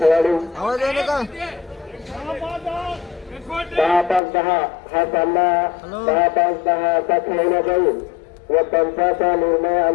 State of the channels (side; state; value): right; drops out; at 4.2 s